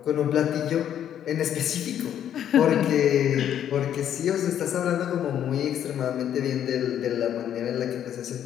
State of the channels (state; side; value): quieter; right; 10.1 dB